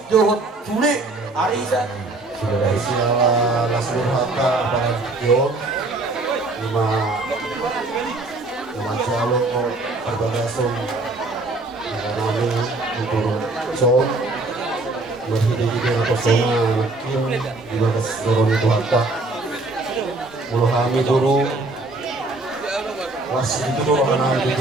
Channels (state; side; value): quieter; left; 3.1 dB